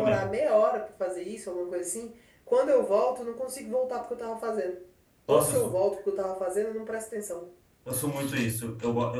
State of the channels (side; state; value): both; identical; correlation 1.00